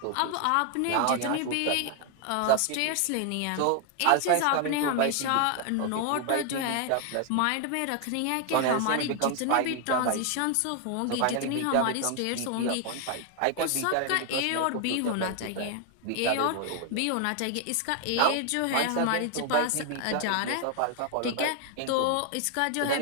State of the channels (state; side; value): different; both; correlation 0.00